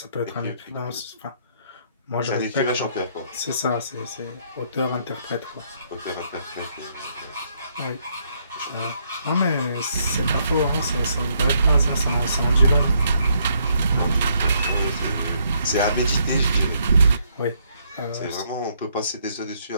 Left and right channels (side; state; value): both; inverted; correlation -0.71